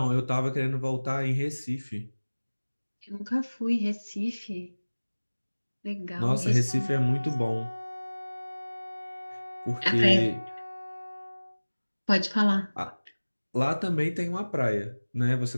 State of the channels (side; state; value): both; inverted; correlation -1.00